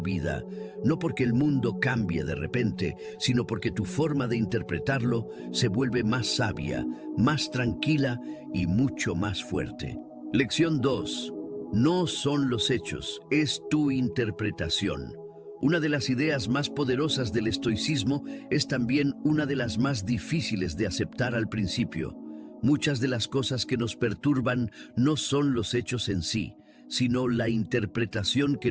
no porque el mundo cambie de repente, sino porque tu forma de interpretarlo se vuelve más sabia, más tranquila y mucho más fuerte. Lección 2. No son los hechos, es tu interpretación. Una de las ideas más poderosas del estoicismo es también una de las más difíciles de aceptar al principio. Muchas de las cosas que nos perturban no son los hechos en sí, sino la interpretación que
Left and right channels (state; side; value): identical; both; correlation 1.00